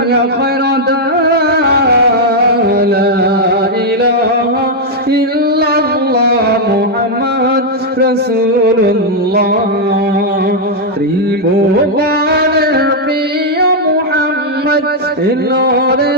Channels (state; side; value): normal; both; correlation -0.02